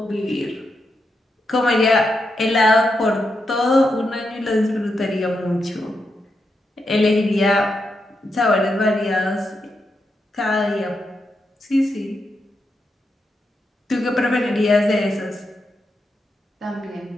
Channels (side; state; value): both; normal; correlation 0.84